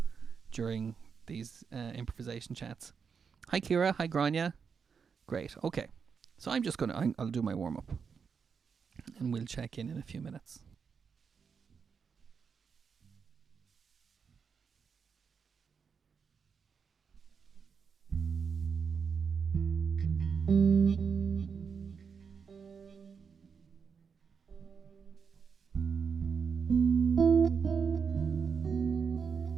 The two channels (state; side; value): quieter; left; 6.1 dB